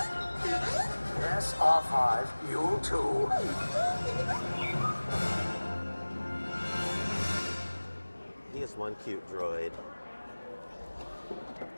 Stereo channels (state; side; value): inverted; both; correlation -1.00